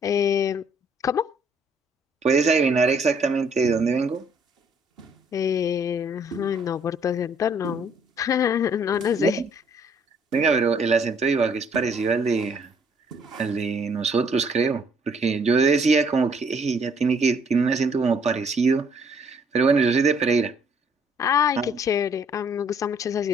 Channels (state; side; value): normal; both; correlation 0.63